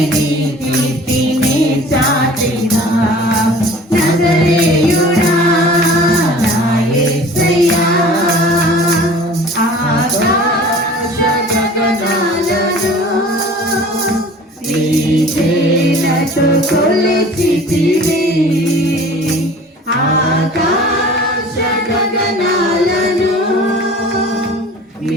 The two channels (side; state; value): both; normal; correlation 0.45